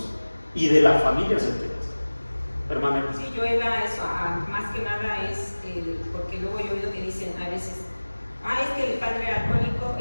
y de las familias enteras. Hermana. Sí, yo iba a eso, más que nada es, porque luego yo he oído que dicen a veces, es que el padre era alcohólico,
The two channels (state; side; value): inverted; both; correlation -1.00